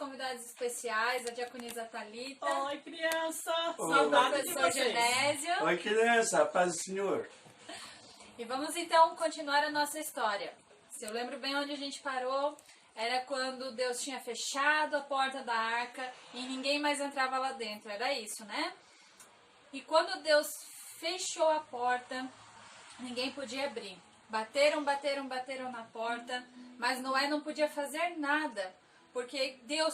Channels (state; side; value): identical; both; correlation 1.00